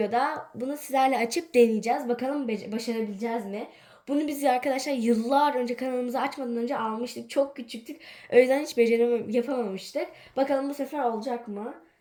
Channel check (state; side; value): identical; both; correlation 1.00